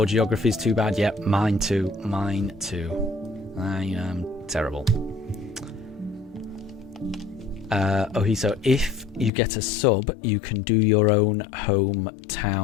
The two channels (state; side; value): drops out; right; at 9.3 s